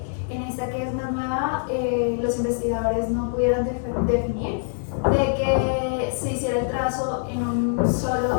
en esta que es más nueva los investigadores no pudieron definir de que se hiciera el trazo en un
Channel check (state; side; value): silent; right; digital silence